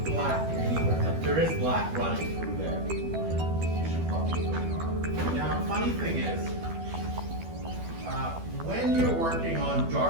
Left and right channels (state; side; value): late; left; 12 ms